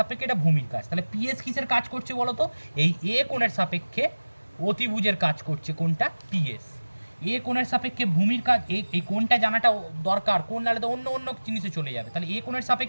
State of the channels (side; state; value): both; inverted; correlation -1.00